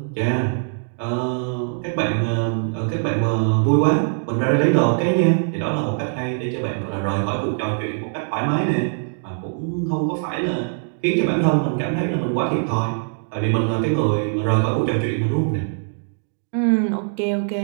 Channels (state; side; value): silent; left; digital silence